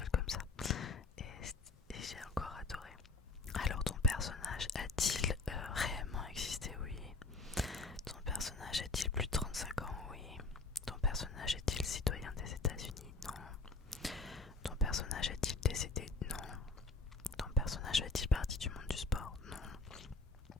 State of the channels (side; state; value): right; quieter; 3.6 dB